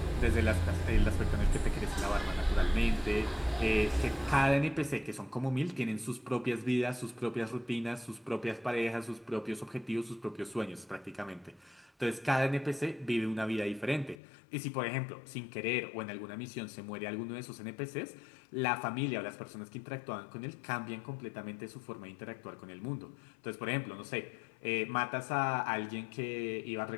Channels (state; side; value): drops out; right; at 14.2 s